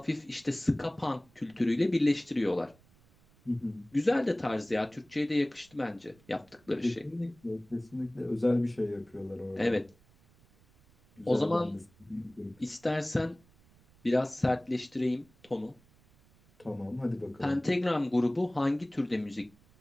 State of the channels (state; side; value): noise; right; rumble, 29 dB below the sound